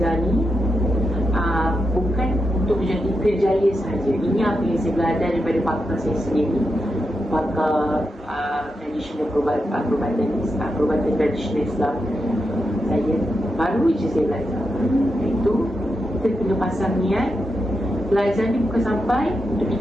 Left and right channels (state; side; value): normal; both; correlation 0.86